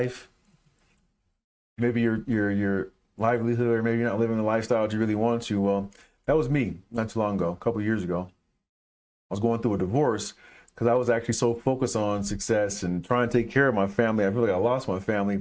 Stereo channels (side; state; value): both; identical; correlation 1.00